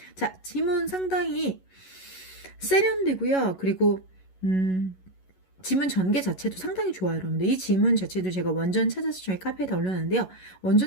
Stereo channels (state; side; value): late; right; 11 ms